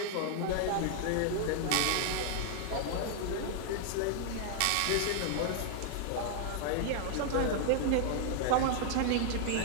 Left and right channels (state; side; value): different; both; correlation 0.00